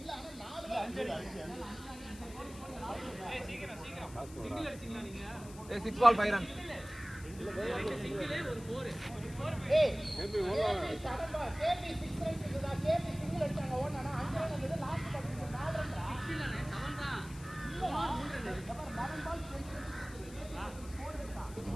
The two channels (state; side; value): noise; left; hiss, 18 dB below the sound